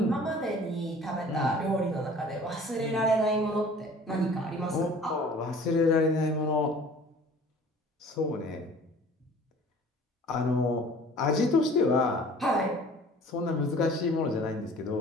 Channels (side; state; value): both; normal; correlation 0.48